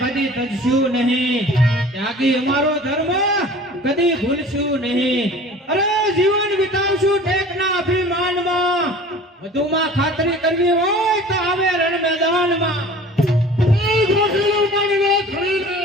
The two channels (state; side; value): normal; both; correlation 0.44